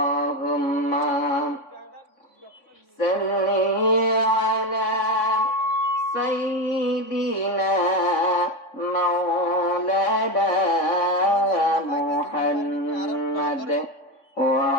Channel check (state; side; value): late; right; 3.5 ms